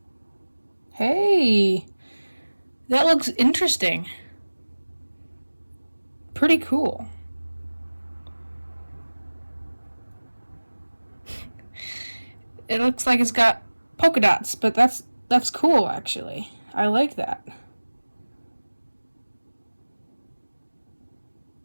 Hey, that looks interesting. Pretty cool. It looks like it's got polka dots, but that's cool actually. I like that.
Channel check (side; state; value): both; inverted; correlation -1.00